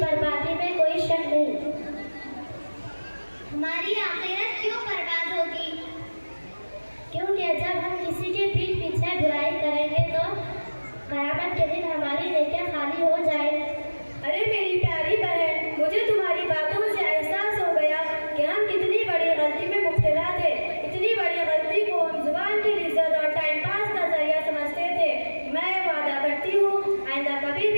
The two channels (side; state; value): both; inverted; correlation -1.00